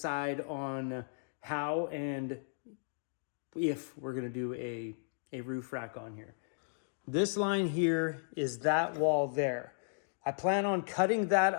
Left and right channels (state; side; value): silent; right; digital silence